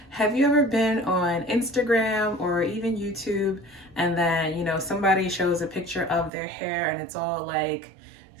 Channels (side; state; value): left; drops out; at 6.3 s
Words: Have you ever been on Instagram or even YouTube and then, somebody shows a picture of their hair and it's all like